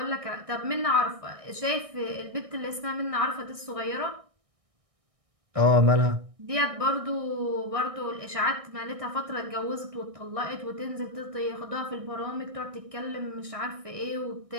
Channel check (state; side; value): late; left; 1.6 ms